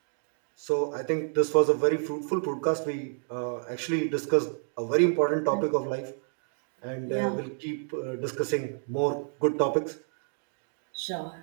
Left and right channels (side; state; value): left; silent; 58 dB below the other